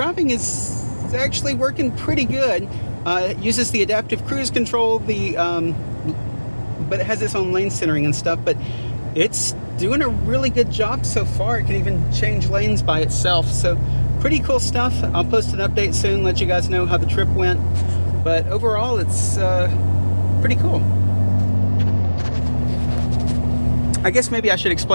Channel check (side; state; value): both; inverted; correlation -1.00